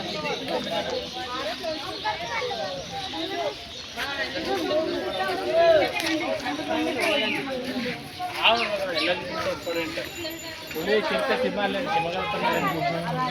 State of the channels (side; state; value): both; identical; correlation 1.00